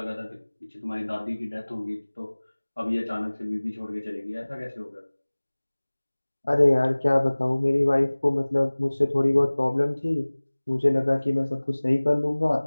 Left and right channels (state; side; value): inverted; both; correlation -1.00